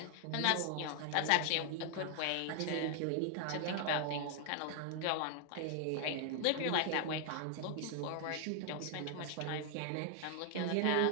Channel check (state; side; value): different; both; correlation 0.00